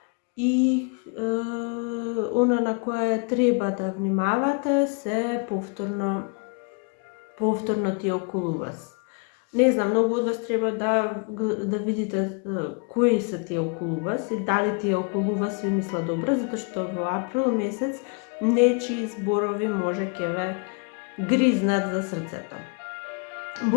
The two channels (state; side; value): quieter; right; 35.8 dB